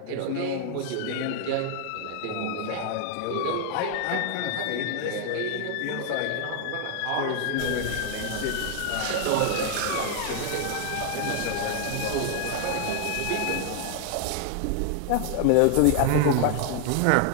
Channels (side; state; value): both; different; correlation 0.00